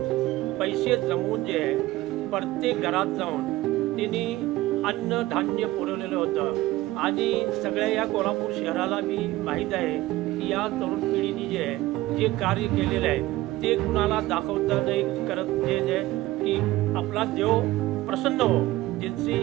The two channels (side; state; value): left; quieter; 17.4 dB